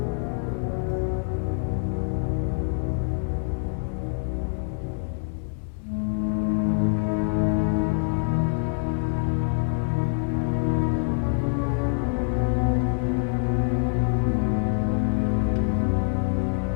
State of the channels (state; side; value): silent; right; digital silence